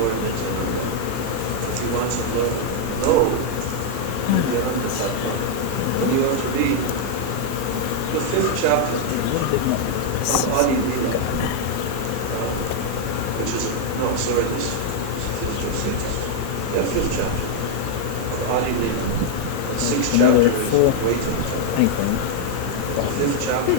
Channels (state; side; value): different; both; correlation 0.00